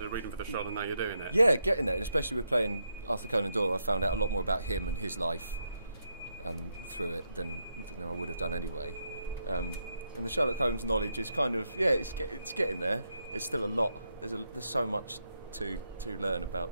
reading for the show and now you're doing it? Yeah, getting there, and especially with playing Arthur Conan Doyle, I found out a lot more about him and his life through it than I would have done anyway. And the Sherlock Holmes knowledge is kind of it's getting there. It's still a lot. There's so much to learn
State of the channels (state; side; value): inverted; both; correlation -0.81